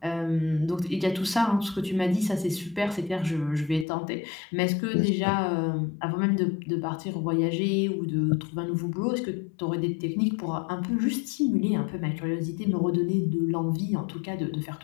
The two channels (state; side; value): drops out; right; at 3.9 s